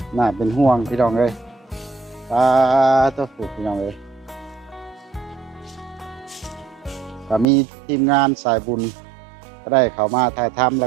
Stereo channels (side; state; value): left; drops out; at 7.5 s